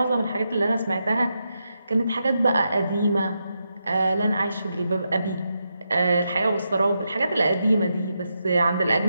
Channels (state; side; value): inverted; both; correlation -0.85